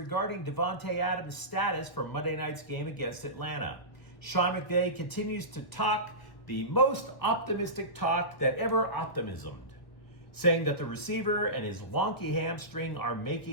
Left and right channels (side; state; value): right; late; 1.3 ms